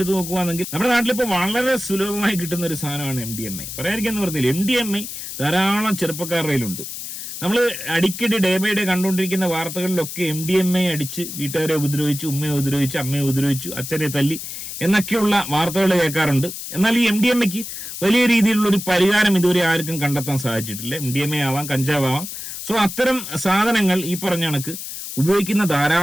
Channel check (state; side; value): noise; left; hiss, 8 dB below the sound